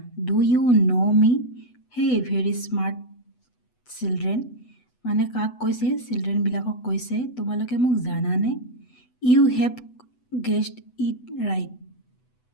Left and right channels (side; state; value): right; late; 8.0 ms